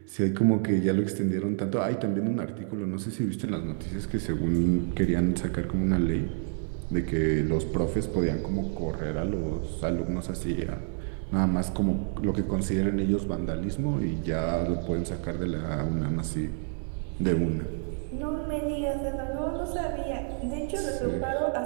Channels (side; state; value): left; silent; 59 dB below the other